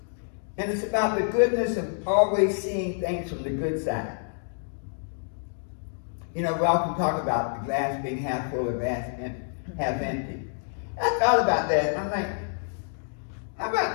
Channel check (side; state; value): right; silent; digital silence